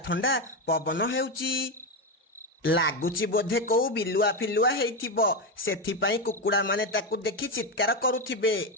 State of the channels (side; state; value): both; normal; correlation 0.11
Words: ଥଣ୍ଡା ପବନ ହେଉଛି। ଲାଗୁଛି ବୋଧେ କୋଉ ବିଲୁଆ ଫିଲୁଆ ହେଇଥିବ, ସେଥିପାଇଁ କୁକୁଡ଼ା ମାନେ ତାକୁ ଦେଖି ଚିତ୍କାର କରୁଥିବେ।